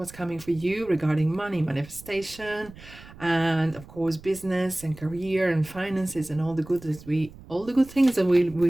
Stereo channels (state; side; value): noise; right; rumble, 19 dB below the sound